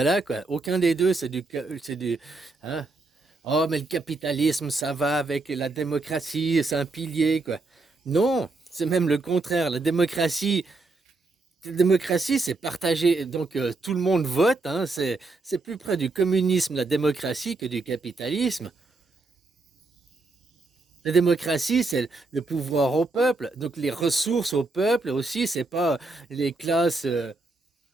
quoi. Aucun des deux, c'est du, hein? Oh, mais le capitalisme, ça va avec la démocratie, c'est un pilier, quoi. Non, c'est même le contraire. La démocratie, c'est partagé. Donc tout le monde vote, hein. C'est plus près du communisme, la démocratie, que du capitalisme. La démocratie, c'est le pouvoir au peuple. Donc les ressources au peuple aussi, c'est pas les classes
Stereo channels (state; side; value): quieter; left; 3.4 dB